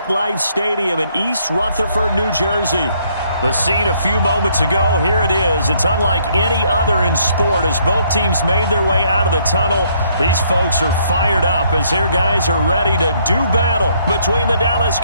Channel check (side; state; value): both; inverted; correlation -0.68